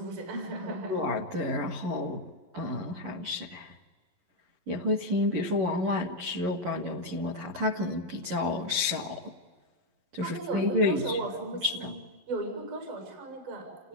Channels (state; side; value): late; left; 11 ms